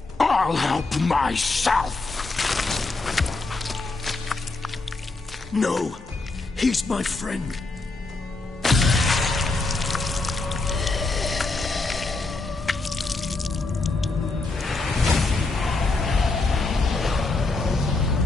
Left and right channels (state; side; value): quieter; right; 3.4 dB